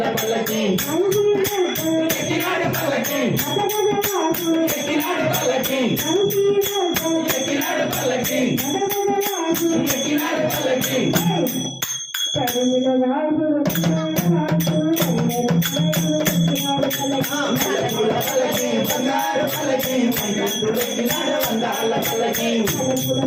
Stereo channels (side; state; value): both; identical; correlation 1.00